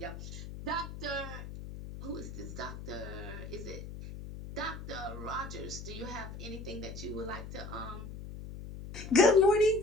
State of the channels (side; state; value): left; noise; hum, 10 dB below the sound